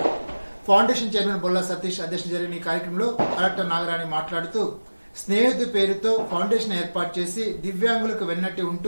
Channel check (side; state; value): both; inverted; correlation -1.00